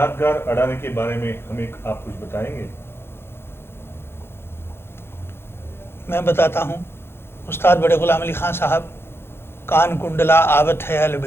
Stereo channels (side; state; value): right; late; 0.11 ms